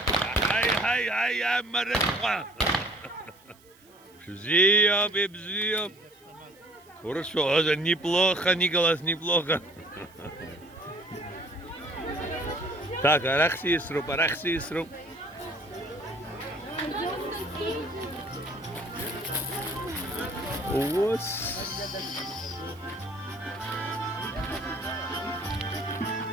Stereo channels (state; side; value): noise; right; hiss, 28 dB below the sound